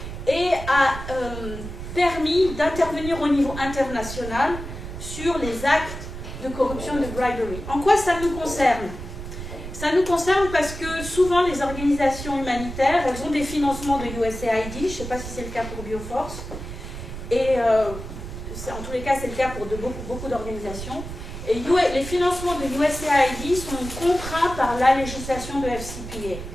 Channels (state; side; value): noise; right; rumble, 9 dB below the sound